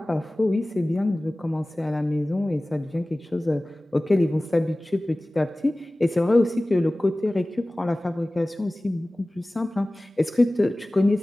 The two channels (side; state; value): both; normal; correlation 0.98